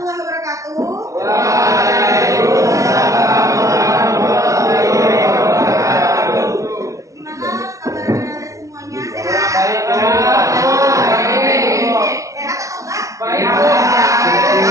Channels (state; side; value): late; left; 0.15 ms